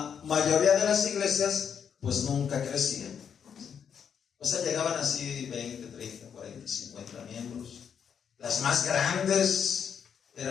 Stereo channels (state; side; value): quieter; right; 7.5 dB